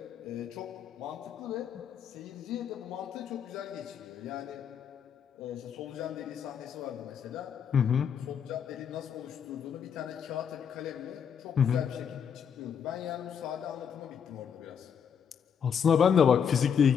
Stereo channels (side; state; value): right; quieter; 7.5 dB